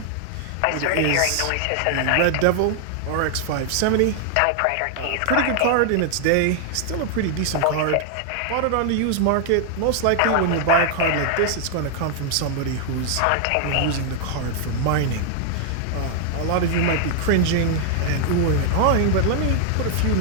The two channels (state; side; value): different; both; correlation 0.00